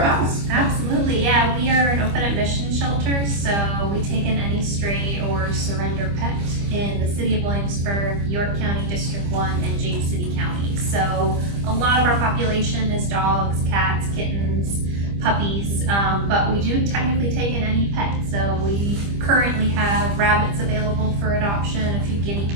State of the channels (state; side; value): late; left; 25 ms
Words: else. Absolutely, yeah. We are an open admission shelter, so we take in any stray or surrender pet in the city of Williamsburg, York County, District 1, and James City County. So a lot of our population is dogs, cats, kittens, puppies, but we do technically take in any pet. So we currently have rabbits available for adoption, a few guinea